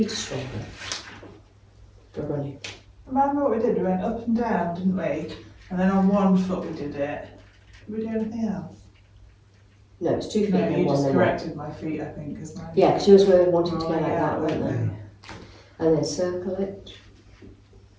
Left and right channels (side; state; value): both; identical; correlation 1.00